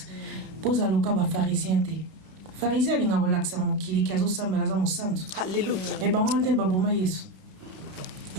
pose à loka ba pharisien te pharisien linga relaxa mukili kazo sambela za musantu haleluya e ba wante ba boma yesu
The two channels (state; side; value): late; left; 32 ms